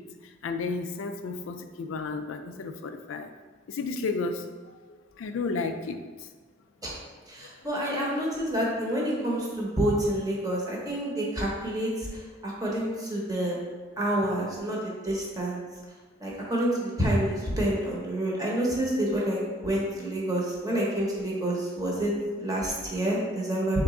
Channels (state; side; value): normal; both; correlation 0.56